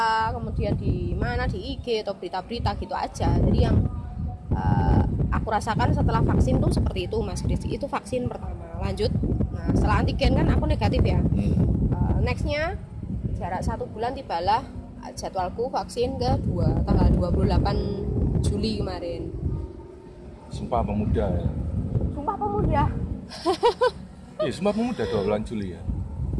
kemudian di mana di IG atau berita-berita gitu aja. Jadi yang aku rasakan setelah vaksin tuh seperti itu Mas Kris. Itu vaksin pertama. Lanjut, nah setelah antigen kan aku negatif ya. Nextnya jarak 1 bulan tibalah jadwalku vaksin kedua tanggal 28 Juli kemarin. Sumpah Pemuda ya. Sumpah Pemuda. Iya, Sumpah Pemuda 2 Juli ya.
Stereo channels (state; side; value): identical; both; correlation 1.00